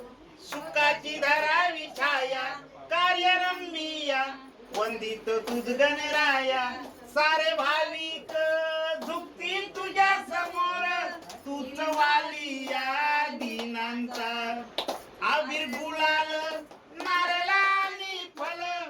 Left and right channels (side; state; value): both; identical; correlation 1.00